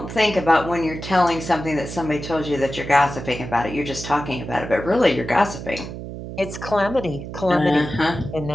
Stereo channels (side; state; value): right; noise; hum, 9 dB below the sound